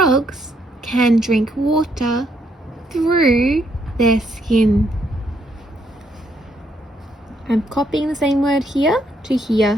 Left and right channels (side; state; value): both; normal; correlation 0.73